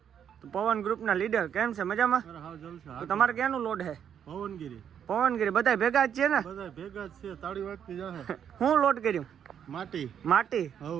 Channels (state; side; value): quieter; left; 8.6 dB